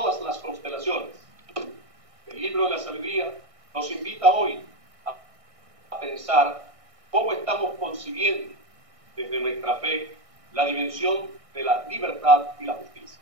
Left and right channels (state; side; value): late; left; 1.6 ms